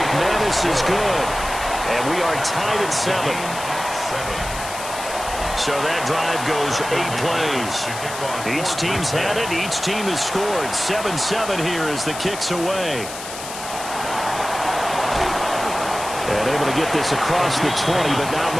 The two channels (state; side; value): noise; left; hiss, 10 dB below the sound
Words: is good. And we are tied at 7. So that drive goes 8 plays. Each team's had it. Each team has scored. 7-7 here as the kick's away. And able to get this across the 20, but not